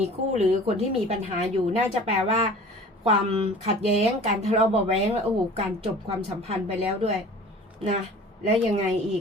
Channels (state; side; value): normal; both; correlation 0.44